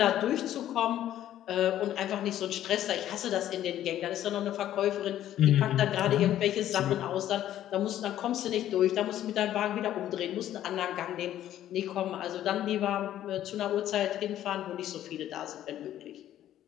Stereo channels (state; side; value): quieter; right; 12.1 dB